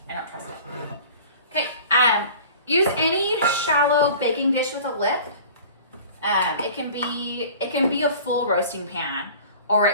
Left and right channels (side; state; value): both; inverted; correlation -0.43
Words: I don't trust it. Okay, use any shallow baking dish with a lip. It can be a full roasting pan, or